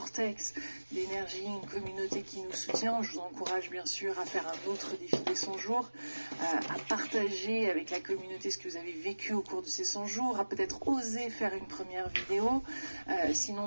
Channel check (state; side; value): inverted; both; correlation -1.00